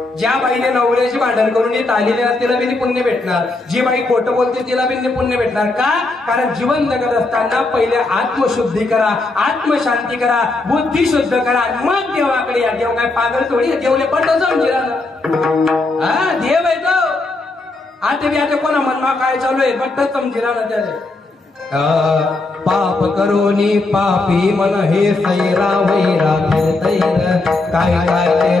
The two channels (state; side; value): quieter; right; 3.2 dB